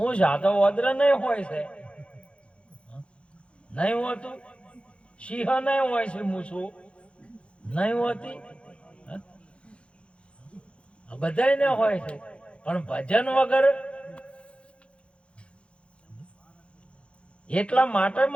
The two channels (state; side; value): late; right; 0.059 ms